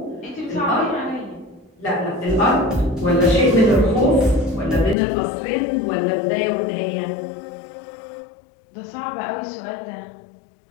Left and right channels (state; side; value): drops out; right; at 5.0 s